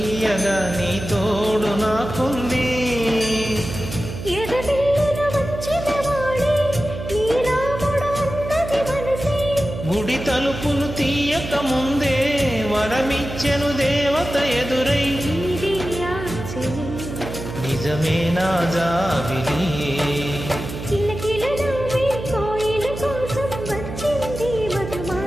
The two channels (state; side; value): noise; right; hum, 9 dB below the sound